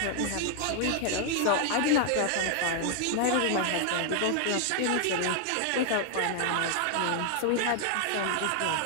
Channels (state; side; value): different; both; correlation 0.00